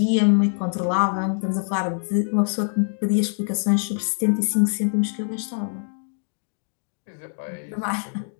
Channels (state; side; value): silent; right; digital silence